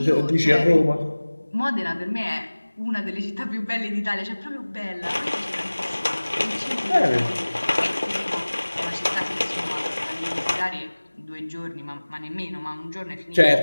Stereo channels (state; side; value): inverted; both; correlation -1.00